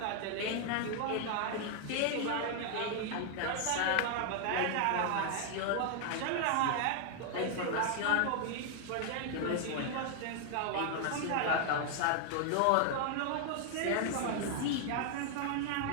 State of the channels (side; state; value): both; different; correlation 0.00